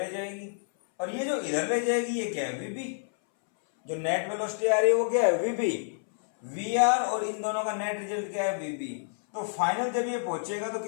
जाएगी, और ये जो इधर ले जाएगी ये क्या है, वी बी। जो नेट वेलोसिटी आ रही है वो क्या है, वी बी। वी आर और इन दोनों का नेट रिजल्ट क्या है, वी बी। तो फाइनल जब ये पहुंचेगा तो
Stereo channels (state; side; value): silent; right; 58 dB below the other